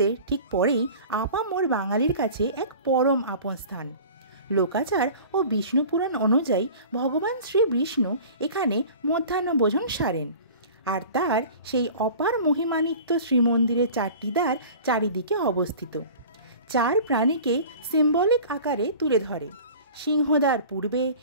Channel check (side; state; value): both; inverted; correlation -0.41